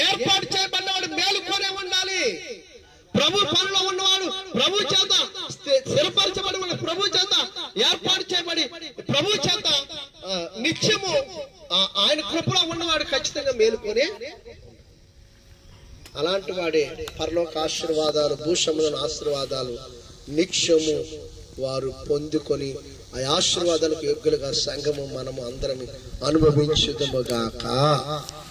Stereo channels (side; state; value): both; identical; correlation 1.00